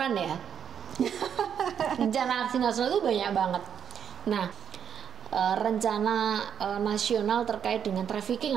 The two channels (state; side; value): quieter; left; 8.2 dB